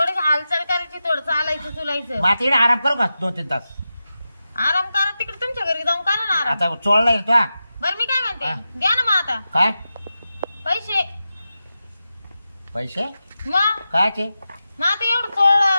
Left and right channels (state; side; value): inverted; both; correlation -0.91